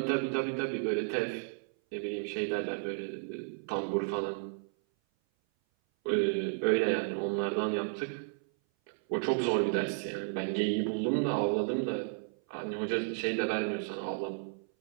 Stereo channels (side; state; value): left; silent; 56 dB below the other